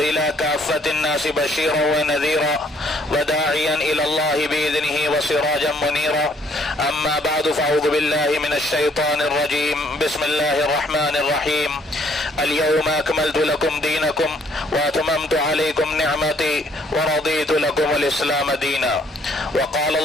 إلى كافة الناس بشيرا ونذيرا وداعيا إلى الله بإذنه وسراجا منيرا أما بعد فأعوذ بالله من الشيطان الرجيم بسم الله الرحمن الرحيم اليوم أكملت لكم دينكم وأتممت عليكم نعمتي ورضيت لكم الإسلام دينا وقال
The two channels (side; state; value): both; normal; correlation 0.64